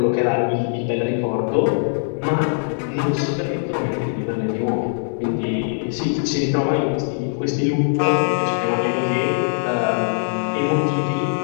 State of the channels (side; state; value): right; silent; digital silence